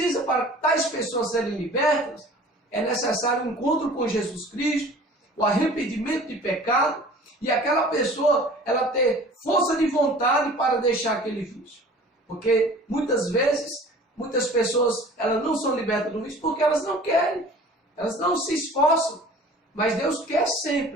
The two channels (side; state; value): both; normal; correlation 0.45